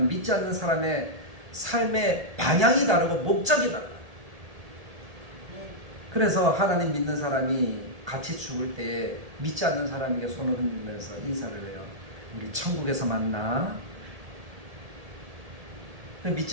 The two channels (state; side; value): late; left; 1.8 ms